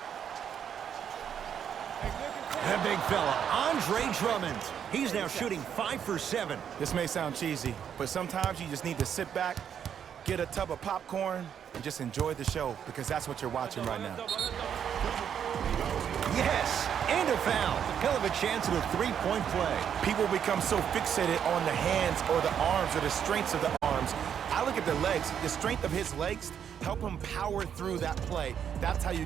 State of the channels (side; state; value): left; quieter; 8.5 dB